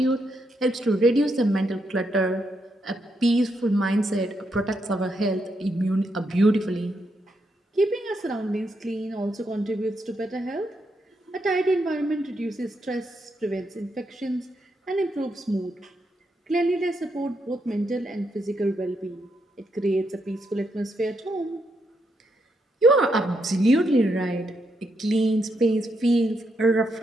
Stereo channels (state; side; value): normal; both; correlation 0.80